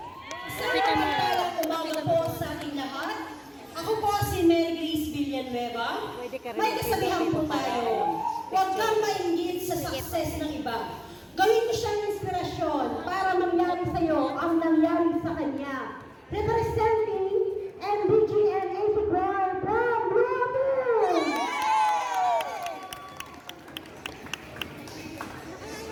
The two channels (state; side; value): identical; both; correlation 1.00